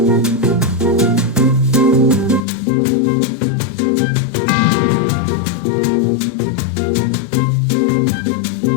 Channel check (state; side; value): drops out; right; at 2.4 s